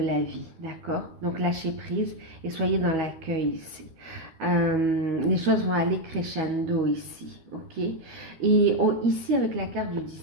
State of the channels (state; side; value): late; left; 12 ms